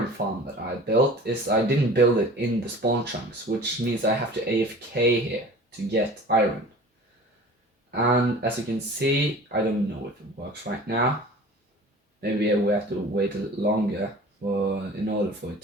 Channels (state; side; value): normal; both; correlation 0.42